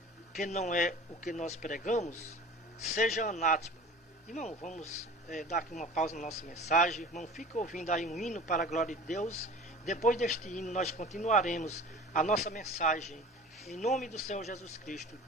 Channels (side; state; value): both; normal; correlation 0.40